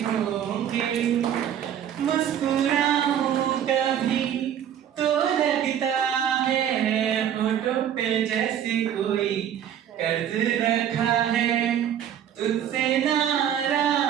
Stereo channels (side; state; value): left; quieter; 9.7 dB